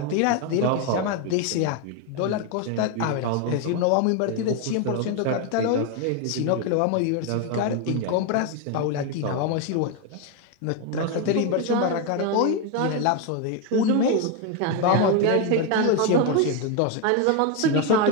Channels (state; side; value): different; both; correlation 0.02